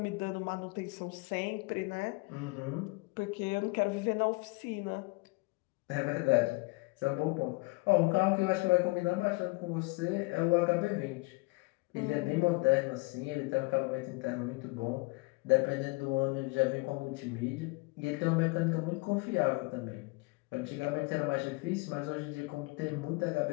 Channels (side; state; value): right; quieter; 26.1 dB